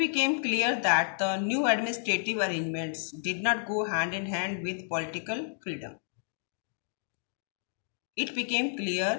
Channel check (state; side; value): silent; right; digital silence